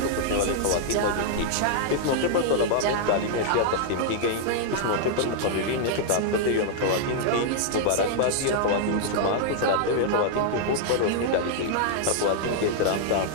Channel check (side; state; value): both; different; correlation -0.01